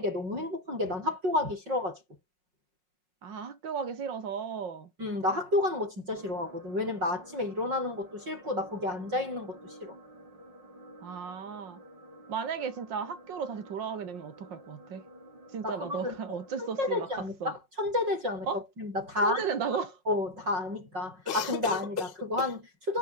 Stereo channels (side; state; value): left; late; 5.5 ms